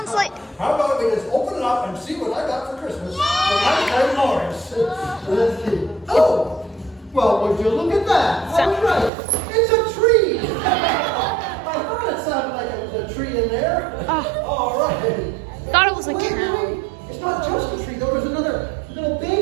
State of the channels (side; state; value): left; drops out; at 9.1 s